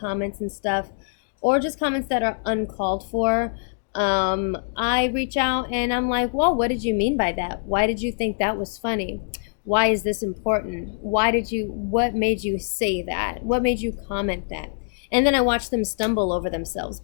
and stuff, or just comments that are uncalled for. I reach out and I'm like, well, what did you mean by that? Why did you think that was funny? Why is this important? What made you say that? What made you comment that? And then I watch them stumble over themselves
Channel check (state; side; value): silent; right; digital silence